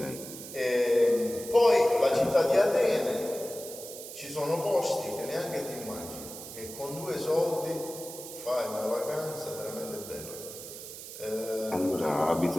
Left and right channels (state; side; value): noise; right; hiss, 12 dB below the sound